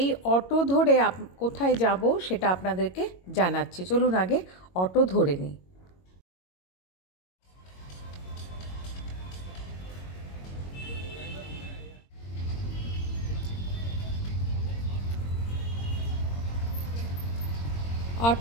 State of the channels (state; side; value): late; right; 22 ms